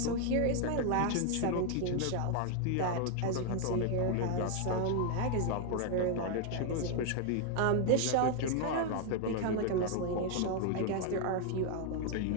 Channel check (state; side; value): different; both; correlation 0.00